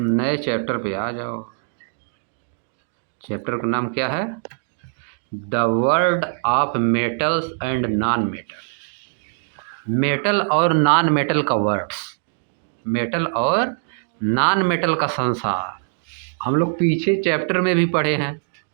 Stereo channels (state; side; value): silent; left; 64 dB below the other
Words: चैप्टर पे आ जाओ। चैप्टर का नाम क्या है? The world of metals and non metal. Metal और नॉन मेटल का वर्ड्स, मेटल और नॉन मेटल का संसार। हम लोग पीछे चैप्टर में भी पढ़े हैं।